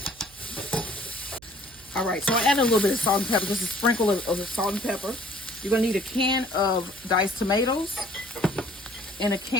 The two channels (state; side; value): noise; right; hum, 26 dB below the sound